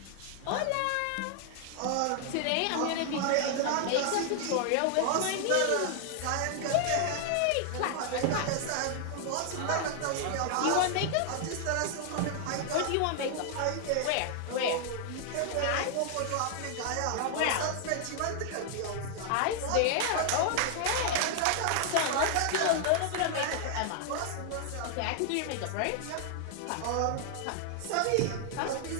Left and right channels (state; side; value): different; both; correlation 0.00